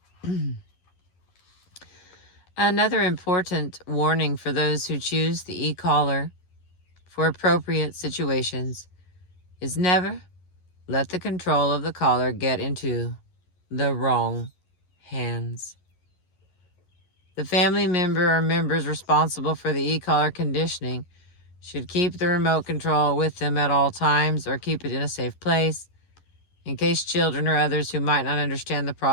Another important warning for those who choose the e-collar for appropriate situations is never let the control of the collar get into the wrong hands. The family member or members responsible for the e-collar conditioning should keep the remote control with them at all times or keep it in a safe place in case children or others who might not understand the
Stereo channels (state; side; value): late; right; 11 ms